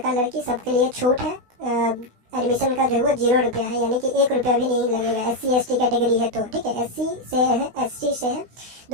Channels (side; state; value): left; late; 16 ms